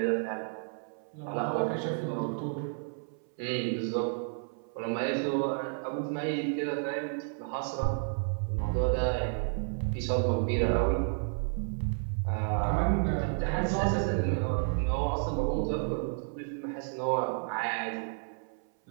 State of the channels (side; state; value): left; silent; 57 dB below the other